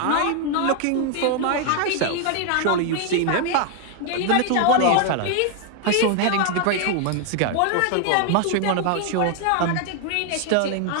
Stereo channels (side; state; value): both; different; correlation 0.00